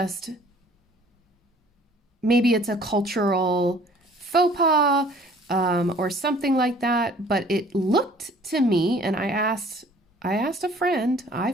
maybe it's a cultural faux pas or something like that, but it looked to me, and I asked a friend, I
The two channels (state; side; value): normal; both; correlation 0.53